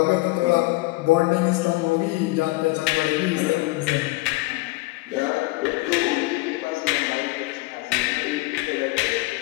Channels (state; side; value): quieter; right; 22.0 dB